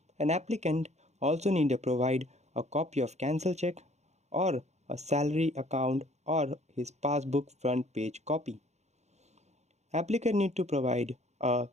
An applicant also need to provide a copy of cancel check or a salary account or his passbook front page copy. Applicant need to provide a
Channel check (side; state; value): left; late; 0.33 ms